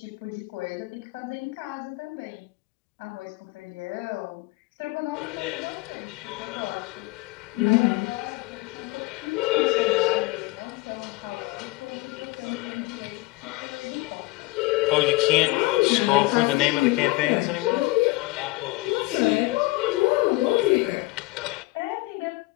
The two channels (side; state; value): right; quieter; 21.8 dB